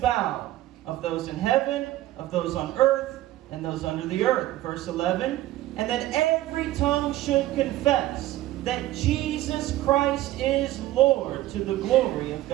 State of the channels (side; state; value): left; quieter; 15.4 dB